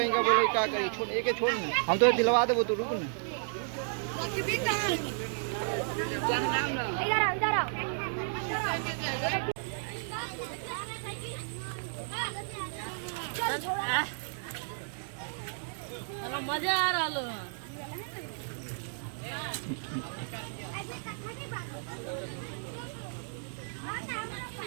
का बोले का करी छोड़ एक छोड़ ना हम तो दिलवा देबो तो रुक ना मजा आ रहा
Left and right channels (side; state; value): left; silent; digital silence